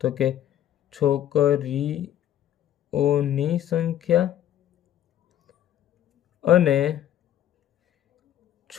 તો કે છોકરીઓની સંખ્યા અને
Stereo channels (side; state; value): right; quieter; 11.2 dB